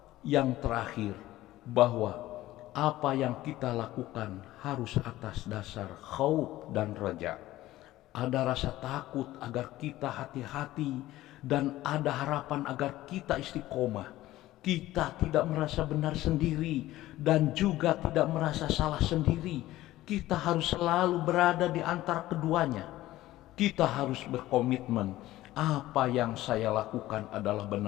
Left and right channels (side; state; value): right; quieter; 15.9 dB